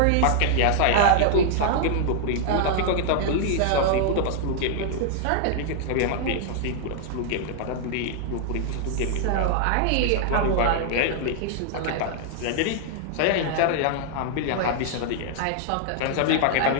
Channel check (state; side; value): different; both; correlation 0.00